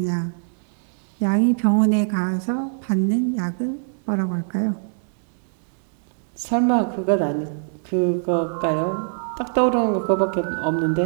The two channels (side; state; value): left; silent; digital silence